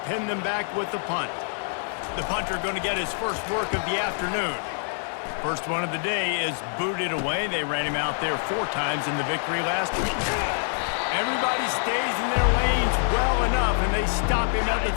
pin them back with the punt. The punter going to get his first work of the afternoon. First one of the day is booted away. They ran him out there 4 times in the victory last week. Everybody stays in their lanes well enough, and they stop him at the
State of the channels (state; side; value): silent; right; digital silence